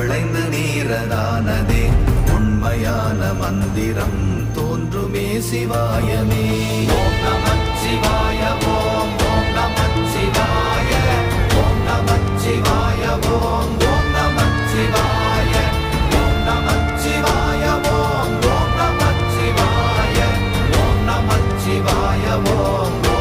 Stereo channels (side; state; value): both; identical; correlation 1.00